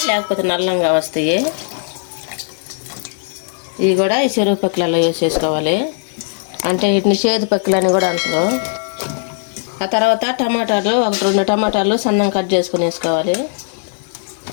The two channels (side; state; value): right; silent; digital silence